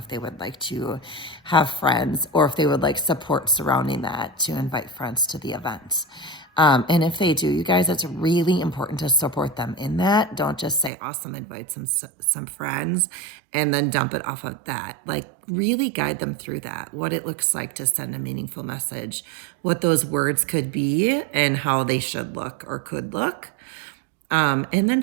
they would like to have friends or if they would like support surrounding that to invite friends to the event. And if they do, you guys, it's really important to support them in that. Don't just say, awesome, invite some friends and then dump it off of that. Like really guide them through that, what it looks like to send a meaningful message, what those words could be and how they should look or could look. And then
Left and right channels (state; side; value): drops out; left; at 10.9 s